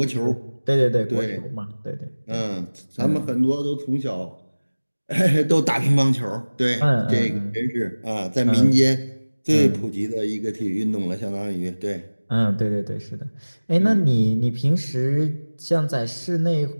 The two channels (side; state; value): both; inverted; correlation -1.00